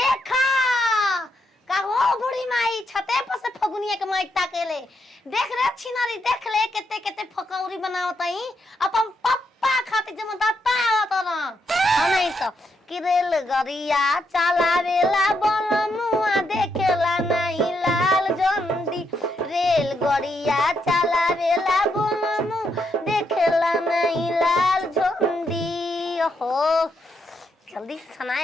का हो बुढ़ी माई छते पर से फगुनिया के माई ताकेले देख रे छिनारी देख ले केते केते फकौरी बनावतई अपन पप्पा खातिर जमदाता आवत ना नहीं तो कि रेल गरिया चलावेला बनमुआ देखेला नहीं लाल जंदी रेल गरिया चलावेला बनमु देखेला नहीं लाल जंदी हो जल्दी से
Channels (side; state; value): both; normal; correlation 0.79